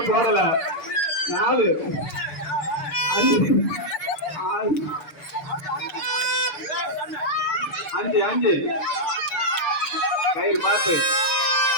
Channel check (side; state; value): right; late; 6.8 ms